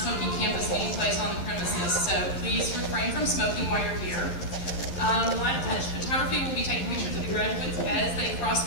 campus meeting place on the premises, so please refrain from smoking while you're here. Live touch photography will be taking pictures of the graduates as they cross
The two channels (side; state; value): right; late; 12 ms